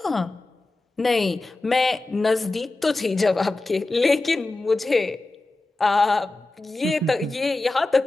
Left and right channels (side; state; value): right; quieter; 3.0 dB